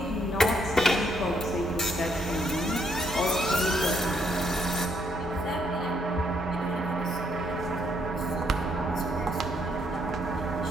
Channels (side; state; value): both; normal; correlation 0.72